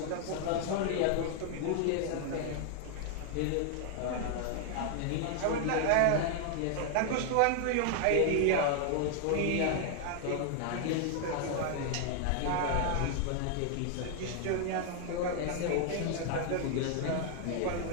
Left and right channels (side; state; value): both; different; correlation 0.00